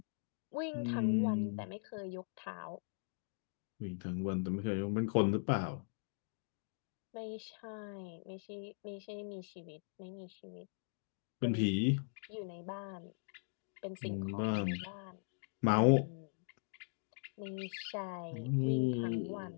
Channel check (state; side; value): silent; right; digital silence